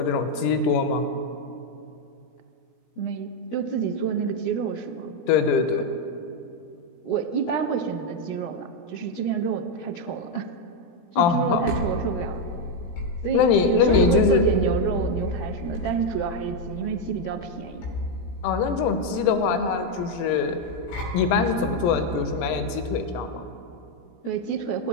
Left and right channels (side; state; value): right; late; 18 ms